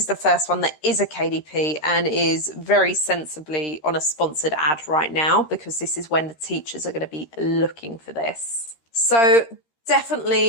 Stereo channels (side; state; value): right; late; 13 ms